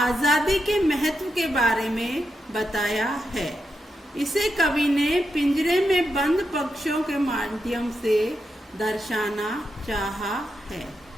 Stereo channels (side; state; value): both; normal; correlation 0.85